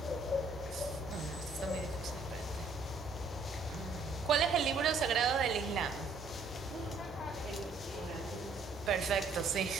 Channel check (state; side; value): quieter; left; 3.8 dB